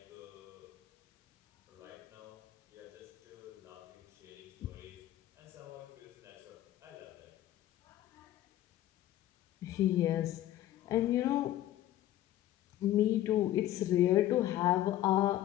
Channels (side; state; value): right; quieter; 13.5 dB